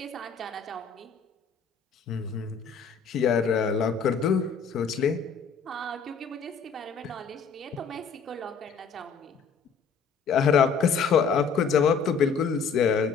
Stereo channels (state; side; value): quieter; right; 5.7 dB